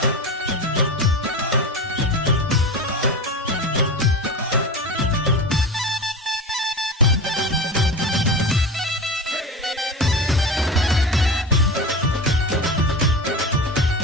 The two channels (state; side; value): normal; both; correlation 0.27